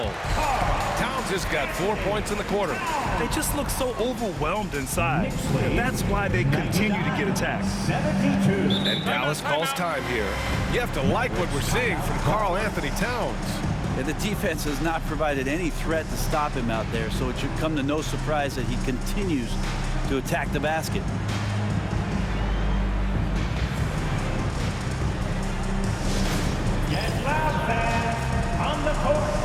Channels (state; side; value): identical; both; correlation 1.00